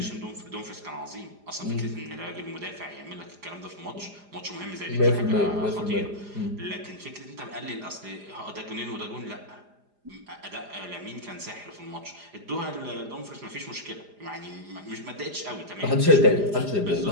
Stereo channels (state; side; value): late; left; 4.9 ms